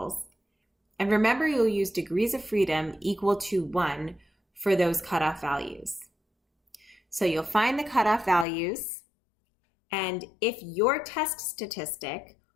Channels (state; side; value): drops out; right; at 8.5 s